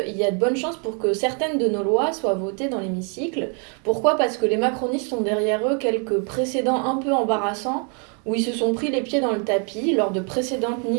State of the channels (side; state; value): left; quieter; 39.8 dB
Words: y a de bonnes chances pour que certaines de nos lois soient votées dans l'hémicycle. Pourquoi? Parce que les macronistes sont derrière eux quelques précédents un peu embarrassants où ils se sont pris les pieds dans le tapis lors de précédentes